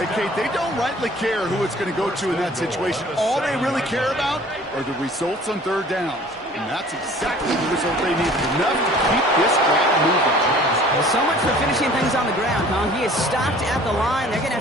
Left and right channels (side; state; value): both; normal; correlation 0.50